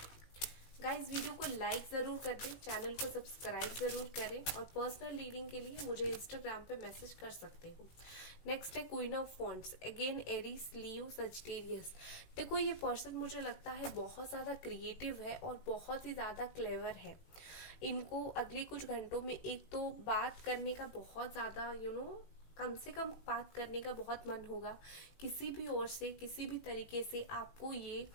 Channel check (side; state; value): right; late; 18 ms